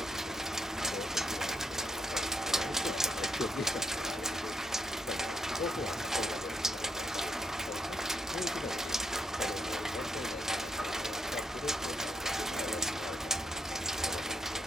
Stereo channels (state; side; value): normal; both; correlation 0.76